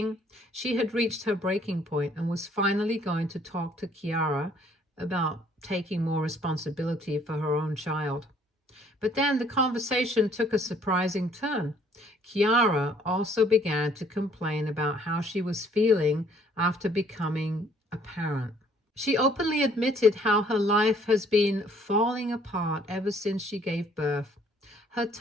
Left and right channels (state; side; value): normal; both; correlation 0.61